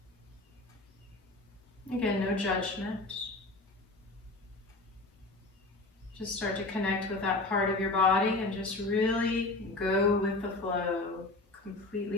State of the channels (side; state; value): right; quieter; 3.0 dB